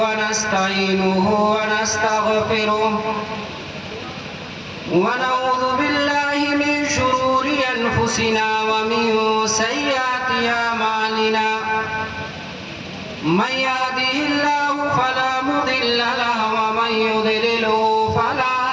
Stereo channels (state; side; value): identical; both; correlation 1.00